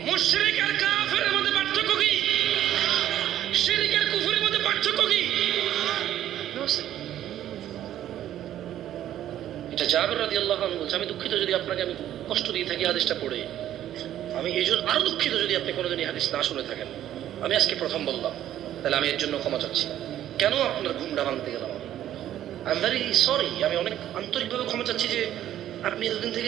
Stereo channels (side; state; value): left; quieter; 11.9 dB